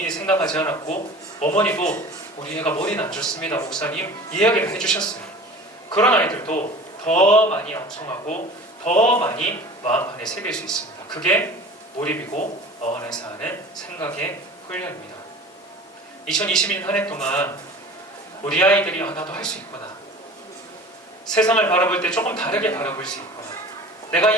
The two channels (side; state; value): both; normal; correlation 0.40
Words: 생각하지 않았고 어머니도 우리 애가 머리는 안 좋습니다 목사님 이야기를 해주셨어요. 그런 아이들도 더 많이 암송하고 더 많이 마음판에 새길 수 있습니다. 그게 몰입이고 어안에서 하는 생각의 훈련입니다. 2021년 한 해 동안 우리 아이들이 나도 할 수 있구나, 세상을 바라볼 때 조금 다르게 바라볼 수 있구나, 내가